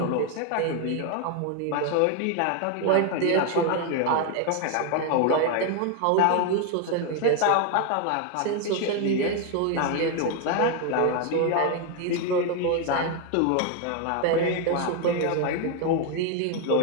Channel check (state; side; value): different; both; correlation 0.01